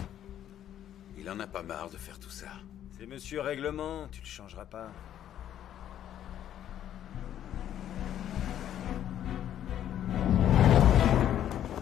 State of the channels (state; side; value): quieter; right; 10.8 dB